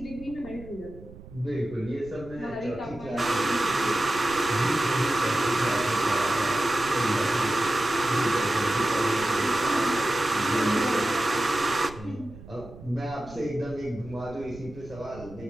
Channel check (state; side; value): noise; right; rumble, 17 dB below the sound